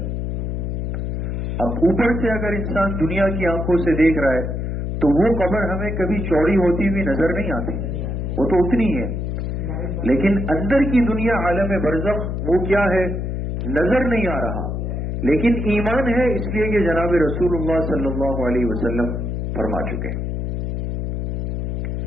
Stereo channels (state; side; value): noise; left; hum, 2 dB below the sound